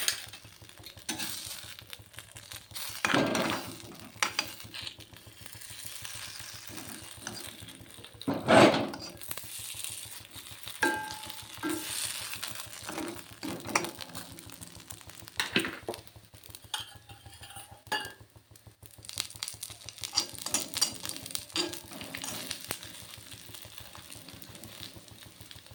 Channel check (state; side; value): identical; both; correlation 1.00